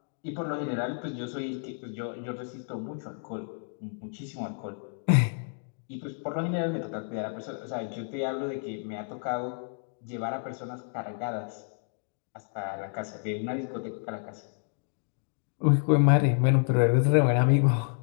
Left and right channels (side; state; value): right; silent; 58 dB below the other